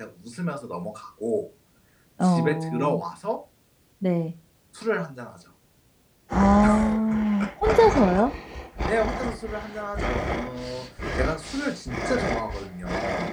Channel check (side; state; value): both; identical; correlation 1.00